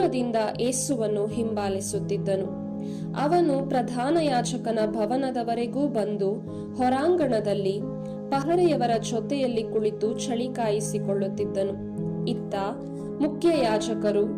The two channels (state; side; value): identical; both; correlation 1.00